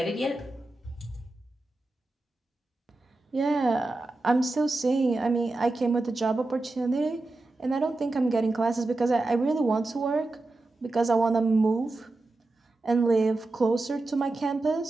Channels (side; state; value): left; quieter; 3.0 dB